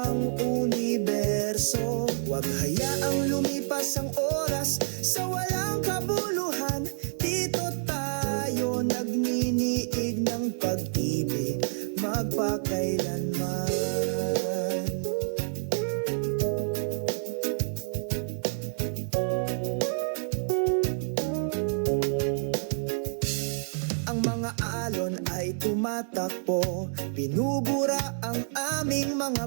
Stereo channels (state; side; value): silent; left; digital silence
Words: universo. Huwag hayaang lumipas ang oras sa walang kabuluhan. Dito tayo nagniniig ng pag-ibig magpakailanman. Tumatakbo, binubura ang aming